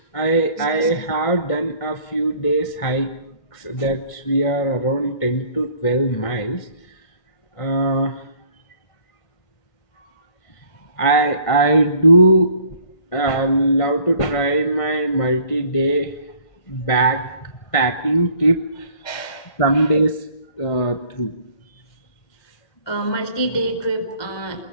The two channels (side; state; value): right; late; 1.5 ms